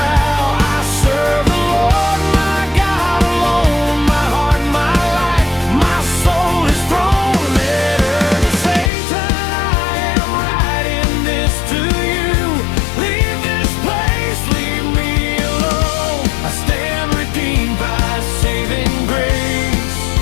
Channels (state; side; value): drops out; right; at 8.9 s